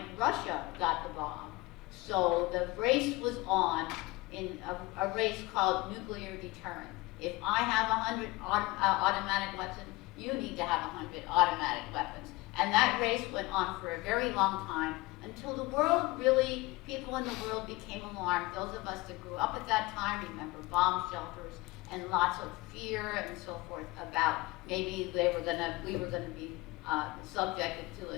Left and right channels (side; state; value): right; quieter; 22.0 dB